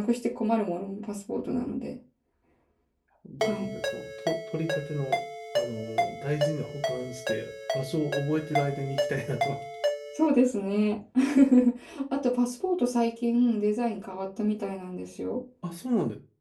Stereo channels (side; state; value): both; identical; correlation 1.00